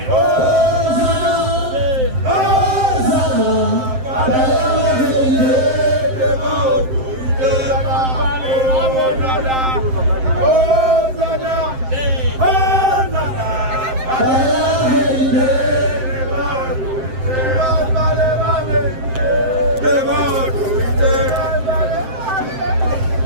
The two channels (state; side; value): late; left; 7.7 ms